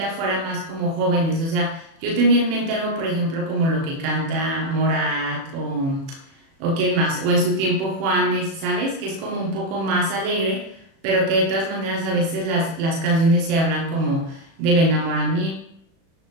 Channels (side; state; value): left; late; 36 ms